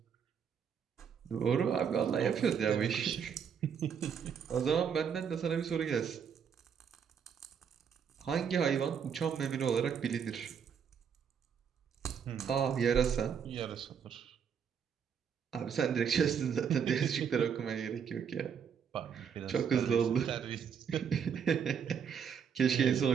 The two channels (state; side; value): quieter; left; 7.3 dB